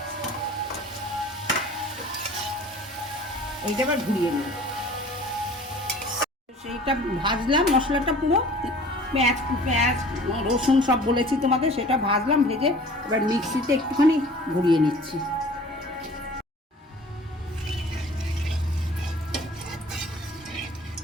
এইটা এবার ঘুরিয়ে নেব। সেইটা ভাজলাম, মশলাটা পুরো পেঁয়াজ রসুন সব বলেছি তোমাদের, সেটা ভাজলাম, ভেজে এবার মিক্সিতে একটুখানি ঘুরিয়ে নিচ্ছি।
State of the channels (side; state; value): both; normal; correlation 0.47